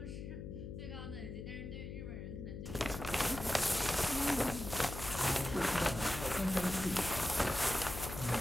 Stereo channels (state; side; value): noise; left; hum, 8 dB below the sound